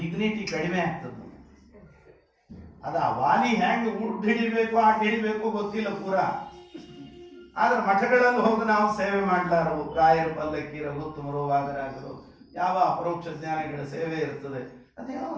ಕಡಿಮೆ ಆಗ್ತದೆ. ಅದ ವಾಲಿ ಹೆಂಗ್ ಉಡ್ ಹಿಡಿಬೇಕು ಆಟ ಹಿಡಿಬೇಕು ಗೊತ್ತಿಲ್ಲ ಪೂರ. ಆದ್ರೆ ಮಠಗಳಲ್ಲಿ ಹೋಗಿ ನಾವು ಸೇವೆ ಮಾಡ್ಲಾರು. ರಾಯರ ಪಲ್ಲಕ್ಕಿ, ರಘುತ್ತಮರು, ವಾದರಾಜರು, ಯಾವ ಅಪರೋಕ್ಷ ಜ್ಞಾನಿಗಳ ಸೇವೆ ಇರ್ತದೆ. ಅದೇನೋ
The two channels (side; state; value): both; identical; correlation 1.00